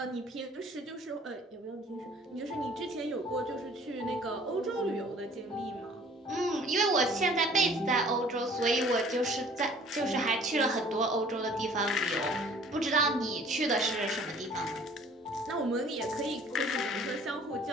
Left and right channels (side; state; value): both; normal; correlation 0.52